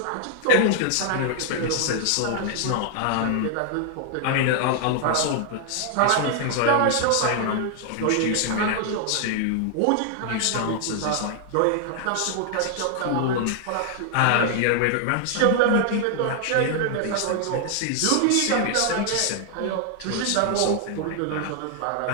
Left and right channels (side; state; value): both; different; correlation 0.00